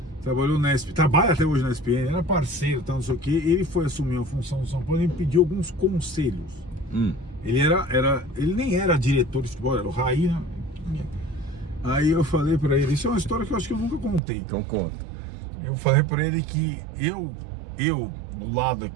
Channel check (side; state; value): left; drops out; at 14.2 s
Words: trabalhou na ESPN, trabalha até hoje na ESPN, era parceiro, não sei o que, ele foi assumir a função do São Paulo e me pediu alguns conselhos. Ele nem era diretor de futebol, era o Raí, né? Aí eu falei pra ele, isso é uma história que eu acho que eu nunca contei. Então conta. Eu falei pra ele que eu do lado